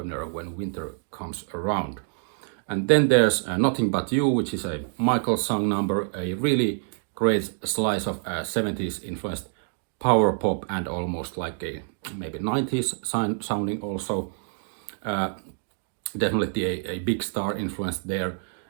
When Winter Comes Around. And then there's Nothing But You, which is a Michael song number, a really great slice of 70s influenced power pop, and almost like a maybe 90s sounding also. Definitely a big star influence there,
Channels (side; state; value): left; silent; 60 dB below the other